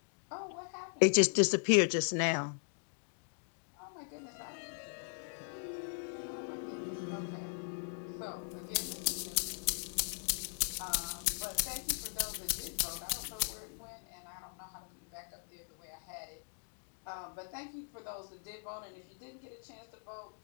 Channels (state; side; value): silent; right; digital silence